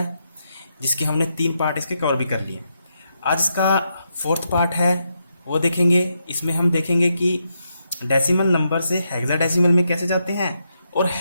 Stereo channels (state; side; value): inverted; both; correlation -0.81